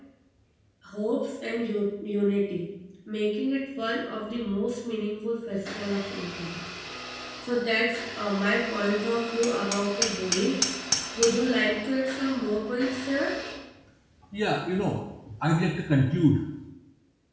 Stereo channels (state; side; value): identical; both; correlation 1.00